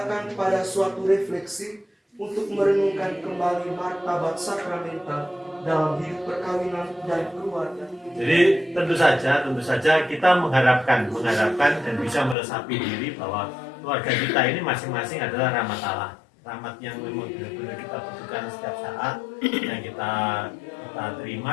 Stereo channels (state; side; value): drops out; right; at 12.4 s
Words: pada suatu refleksi untuk merenungkan kembali martabat sakramental dalam hidup perkawinan dan keluarga. Jadi tentu saja kita mengharapkan dan bisa meresapi diri bahwa keluarga kita ini masing-masing adalah rahmat Allah. Rahmat yang memang benar-benar kita butuhkan setiap saat, yang kita